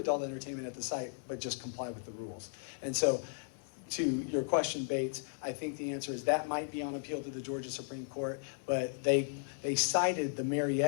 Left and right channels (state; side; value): silent; right; digital silence